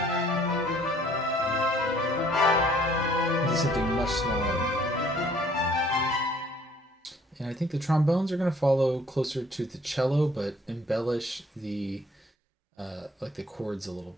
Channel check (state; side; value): normal; both; correlation 0.59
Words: into something much smaller. And I think the trombones are going to follow closer to the cello, but embellish the like the chords a little